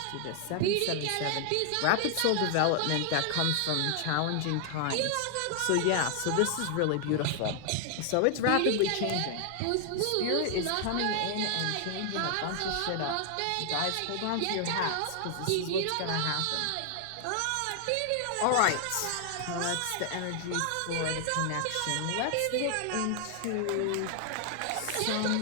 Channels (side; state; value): both; different; correlation 0.00